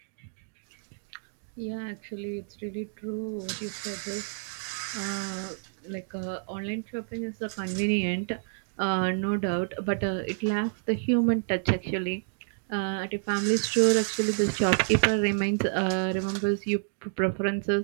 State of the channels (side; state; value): left; silent; 59 dB below the other